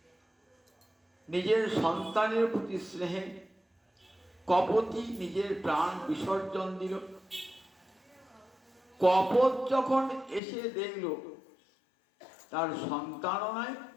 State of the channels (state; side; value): drops out; right; at 10.4 s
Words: নিজের সন্তানের প্রতি স্নেহে কপটি নিজের প্রাণ বিসর্জন দিল। কপট যখন এসে দেখল তার সন্তানও নাই